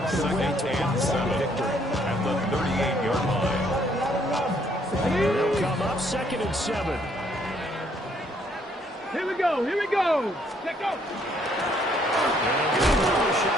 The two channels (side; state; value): both; normal; correlation 0.67